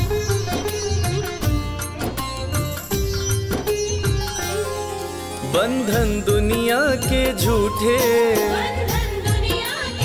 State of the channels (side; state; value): both; identical; correlation 1.00